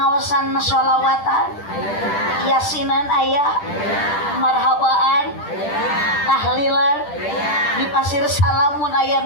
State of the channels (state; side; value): late; right; 10 ms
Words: sholawatan, yasinan aya, marhabaan, pasir salamun aya